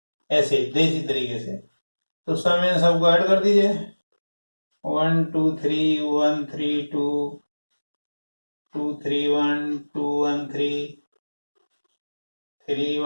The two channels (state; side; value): inverted; both; correlation -1.00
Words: ऐसे देसी तरीके से, तो सम इन सबको ऐड कर दीजिए। 1, 2, 3, 1, 3, 2, 2, 3, 1, 2, 1, 3, 3,